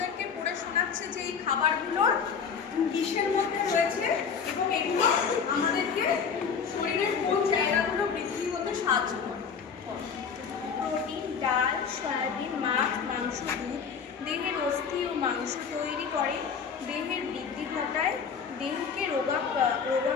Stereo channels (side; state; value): right; quieter; 6.4 dB